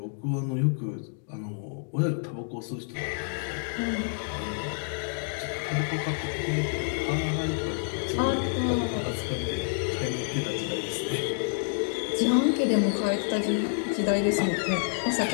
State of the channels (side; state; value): right; silent; digital silence